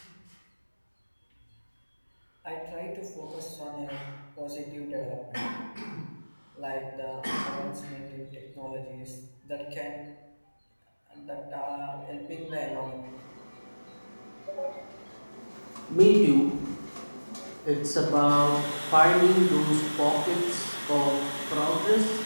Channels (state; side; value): inverted; both; correlation -1.00